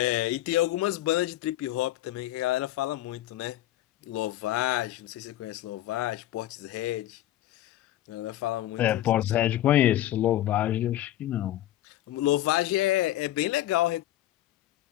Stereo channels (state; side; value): quieter; right; 14.0 dB